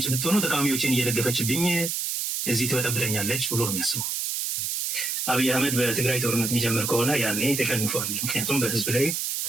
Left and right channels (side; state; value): right; noise; hiss, 1 dB below the sound